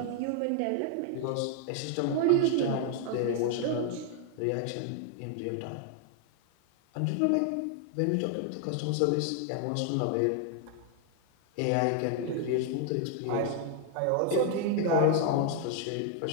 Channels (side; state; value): both; different; correlation 0.00